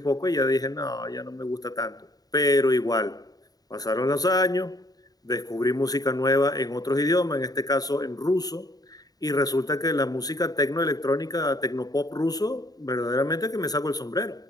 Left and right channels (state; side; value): late; right; 0.18 ms